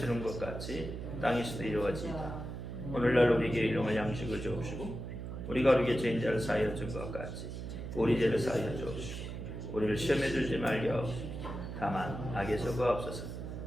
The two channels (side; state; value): right; noise; hum, 7 dB below the sound